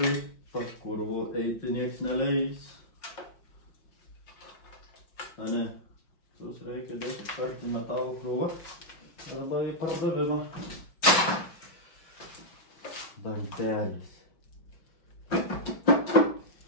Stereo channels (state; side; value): late; right; 5.6 ms